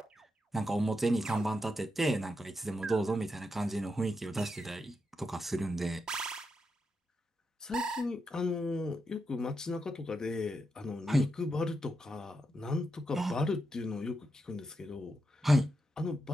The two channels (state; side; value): normal; both; correlation 0.85